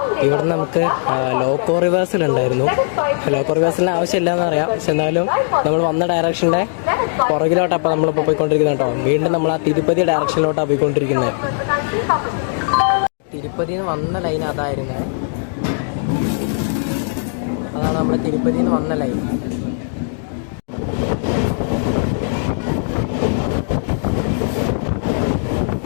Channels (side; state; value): right; silent; 67 dB below the other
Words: ഇവിടുന്ന് നമുക്ക് ലോക്കോ റിവേഴ്സലുണ്ടായിരുന്നു. ലോക്കോ റിവേഴ്സലിന് ആവശ്യമില്ല എന്നറിയാം, പക്ഷെ എന്നാലും നമ്മൾ വന്ന ഡയറക്ഷൻ്റെ പുറകിലോട്ടാണ് അപ്പോൾ നമ്മളിപ്പോൾ പോയിക്കൊണ്ടിരിക്കുന്നത് കേട്ടോ. വീണ്ടും നമ്മൾ ആ തിരുപ്പതി ഡയറക്ഷനിലോട്ടാണ് പോയിക്കൊണ്ടിരിക്കുന്നത്. തിരുപ്പതിയിൽ നിന്ന് വന്ന ലൈൻ അതായിരുന്നു. അതാണ് നമ്മുടെ തിരുപ്പതിയിൽ നിന്ന് വന്ന ലൈൻ.